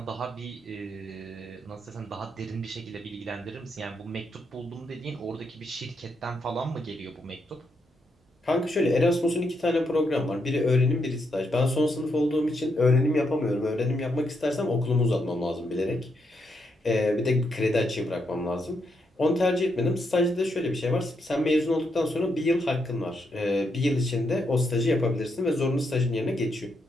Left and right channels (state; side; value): normal; both; correlation 0.79